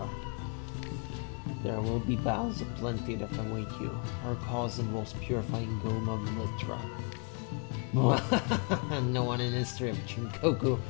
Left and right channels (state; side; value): quieter; right; 37.0 dB